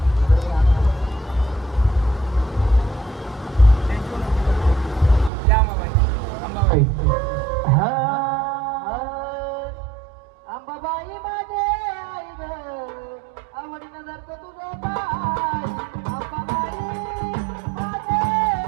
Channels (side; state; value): left; drops out; at 5.3 s